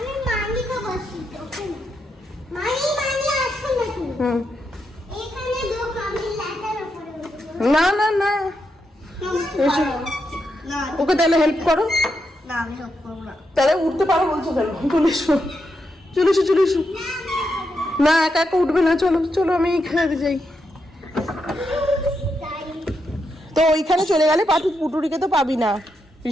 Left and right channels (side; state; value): both; normal; correlation 0.83